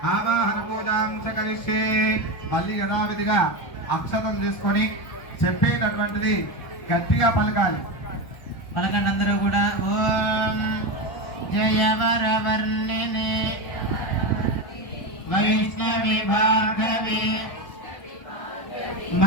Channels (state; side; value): late; right; 1.3 ms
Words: ఆవాహన పూజాం కరిష్యే మళ్ళీ యథావిధిగా అక్షతం తీసుకొని చెప్పేటటువంటిది గట్టిగా పలకాలి పలకండి అందరూ కూడా ఓం జయవరవర్ణిని వైష్ణవి భార్గవి